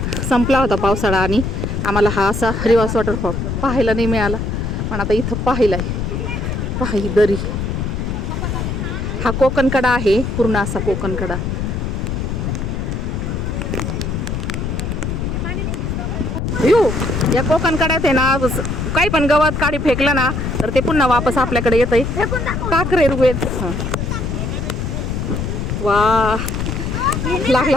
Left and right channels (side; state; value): left; noise; rumble, 2 dB below the sound